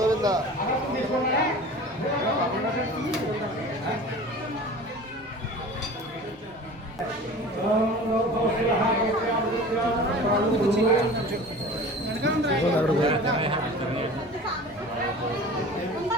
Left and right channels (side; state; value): both; normal; correlation 0.39